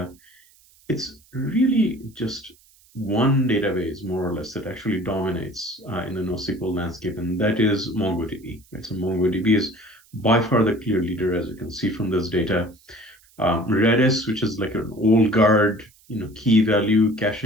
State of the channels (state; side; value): noise; right; hiss, 30 dB below the sound